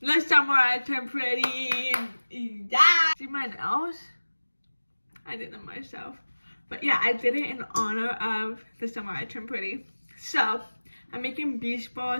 the summer I turn pretty. Yeah. See my nails? I did them myself. But yeah, I did it in honor of the summer I turned pretty. So I'm making beach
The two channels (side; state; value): both; inverted; correlation -1.00